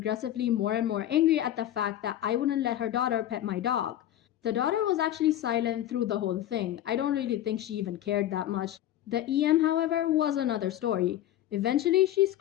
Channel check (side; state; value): right; quieter; 12.5 dB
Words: more and more angry at the fact that I wouldn't let her daughter pet my dog. The daughter was actually silent through the whole thing. I don't really think she even cared that much. The EM, however, was another story. Eventually, she